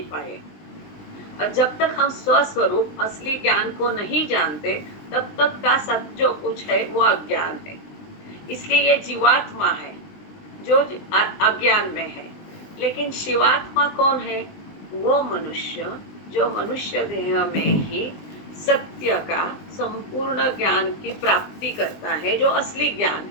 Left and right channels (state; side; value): late; right; 20 ms